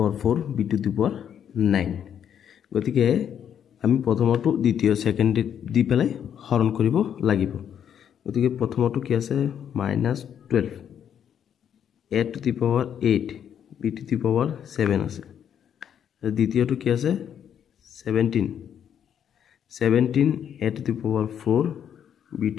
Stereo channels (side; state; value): right; quieter; 8.9 dB